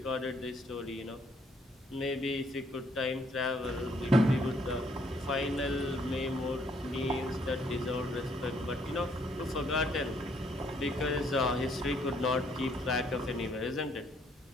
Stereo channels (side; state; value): both; normal; correlation 0.68